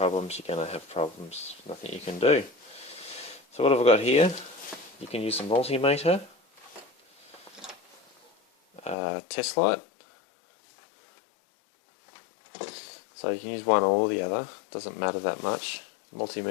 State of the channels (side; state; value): right; drops out; at 9.0 s